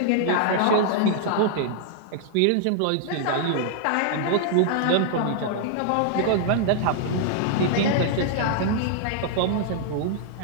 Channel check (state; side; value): different; both; correlation -0.01